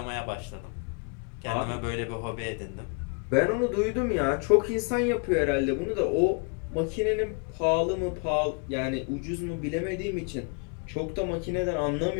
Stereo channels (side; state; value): right; quieter; 38.1 dB